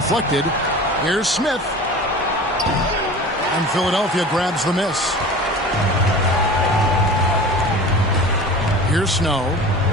Here's Smith. And Philadelphia grabs the miss. Here's Snow.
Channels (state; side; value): normal; both; correlation 0.38